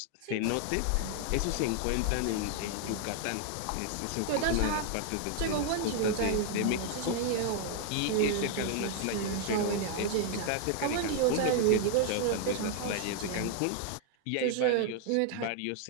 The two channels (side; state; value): both; different; correlation 0.00